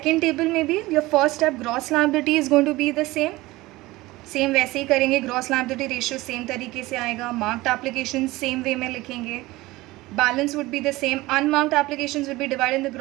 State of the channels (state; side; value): quieter; left; 19.5 dB